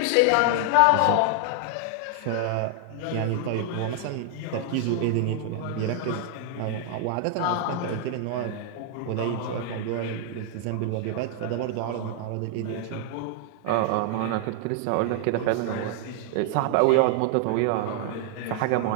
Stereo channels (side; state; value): both; different; correlation 0.00